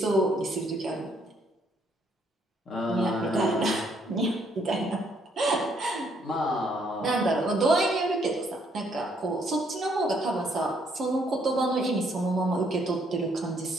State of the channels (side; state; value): both; normal; correlation 0.69